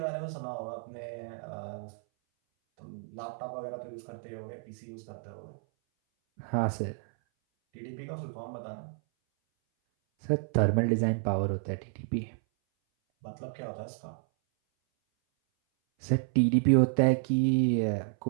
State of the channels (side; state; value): left; silent; 57 dB below the other